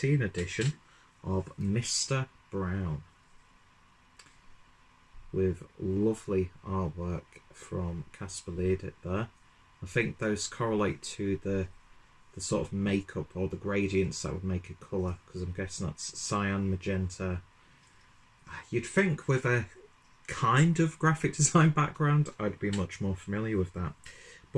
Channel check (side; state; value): both; identical; correlation 1.00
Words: edition of Mr. Brown, with lovely artwork from Kasper Ledet there. I think those correlate to the sort of makeup or the gradients that would make a colour, because I'm guessing that's cyan, magenta. You'd think with a kind of graphic design background I'd be much more familiar with that.